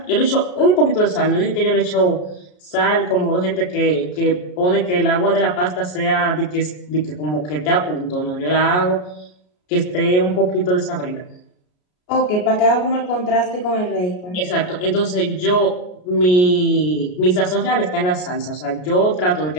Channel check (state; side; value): late; right; 33 ms